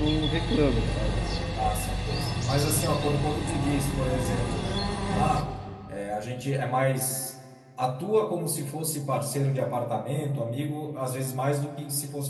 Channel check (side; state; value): both; identical; correlation 1.00